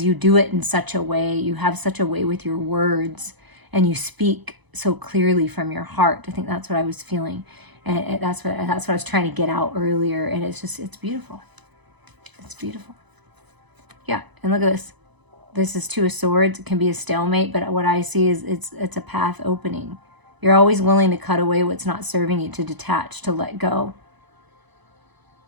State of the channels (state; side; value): late; left; 1.0 ms